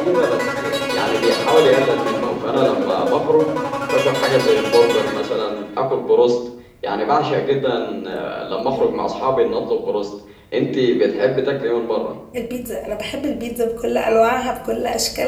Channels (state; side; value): identical; both; correlation 1.00